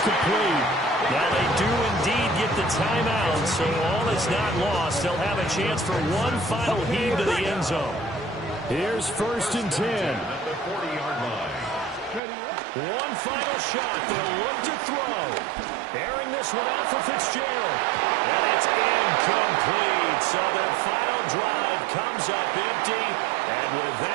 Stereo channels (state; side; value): drops out; left; at 12.2 s